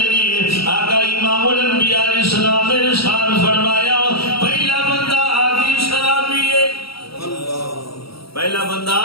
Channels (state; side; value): late; right; 0.75 ms